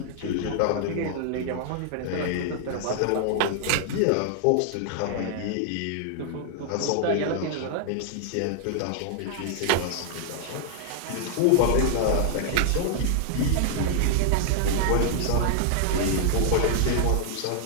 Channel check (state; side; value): different; both; correlation -0.01